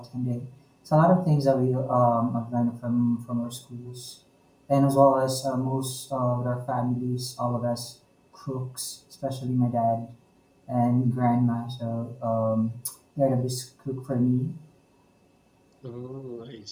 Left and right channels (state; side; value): identical; both; correlation 1.00